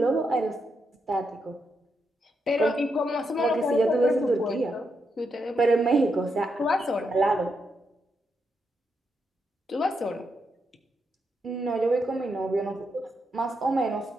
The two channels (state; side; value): normal; both; correlation 0.82